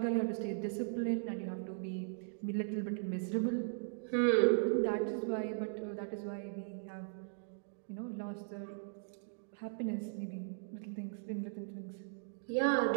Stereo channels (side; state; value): left; silent; digital silence